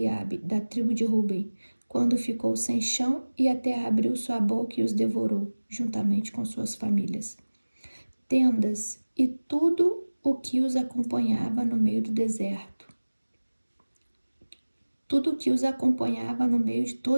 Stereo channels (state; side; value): inverted; both; correlation -1.00